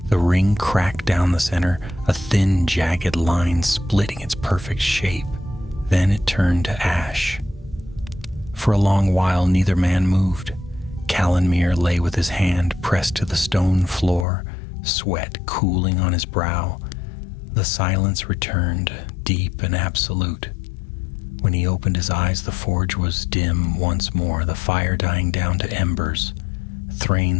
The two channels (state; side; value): drops out; right; at 14.2 s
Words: The ring cracked down the center, a thin, jagged line splitting its perfect shape. Then it turned to ash. For a long while, neither man moved. Callanmere lay with his hand pressed to the stone floor, sweat cooling on his brow. The silence returned, deep and absolute. When he opened his eyes, the forge was dim once more, the fire dying down to embers.